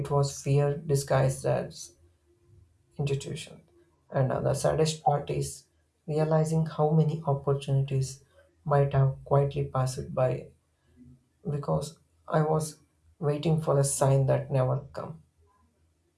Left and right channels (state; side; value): identical; both; correlation 1.00